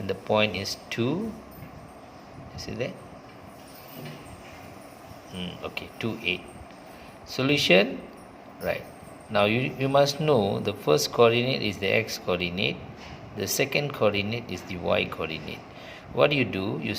the point is 2. You see that? Okay, 2, 8. Solution, right. Now you must know the first coordinate is the x coordinate, the second coordinate is the y coordinate. What do? You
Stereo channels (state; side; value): identical; both; correlation 1.00